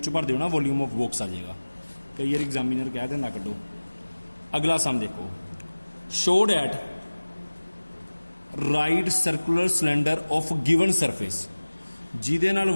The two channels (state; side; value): inverted; both; correlation -1.00